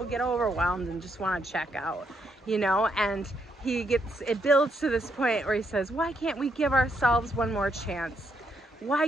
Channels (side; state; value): both; normal; correlation 0.76